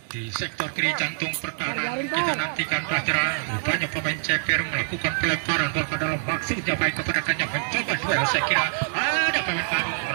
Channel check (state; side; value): silent; left; digital silence